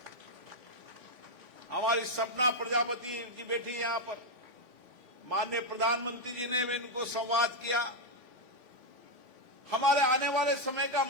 हमारी सपना प्रजापति जी बैठी यहां पर, माननीय प्रधानमंत्री जी ने इनको संवाद किया। हमारे आने वाले समय का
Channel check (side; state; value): left; late; 3.5 ms